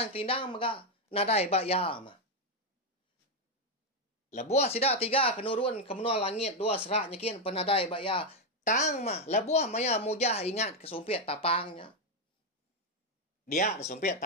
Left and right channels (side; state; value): both; normal; correlation 0.04